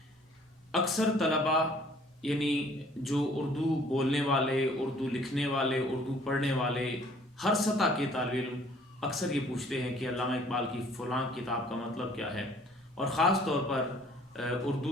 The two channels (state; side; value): normal; both; correlation 0.56